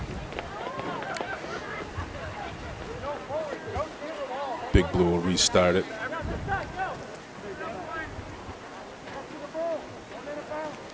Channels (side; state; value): both; identical; correlation 1.00